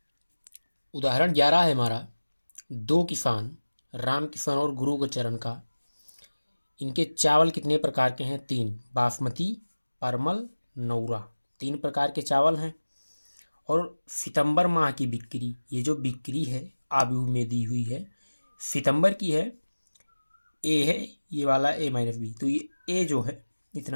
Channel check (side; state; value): both; inverted; correlation -1.00